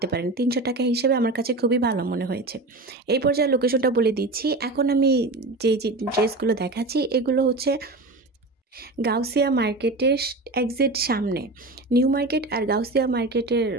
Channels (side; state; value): left; quieter; 3.0 dB